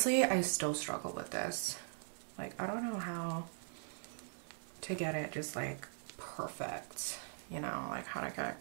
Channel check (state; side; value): silent; left; 51 dB below the other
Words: I still struggle with this. Like, I don't know how to get it just like perfect, you know, like how to